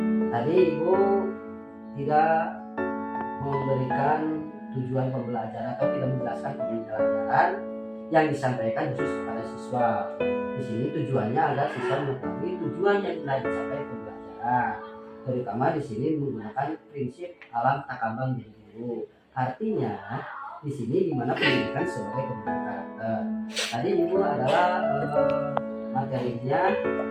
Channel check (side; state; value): both; identical; correlation 1.00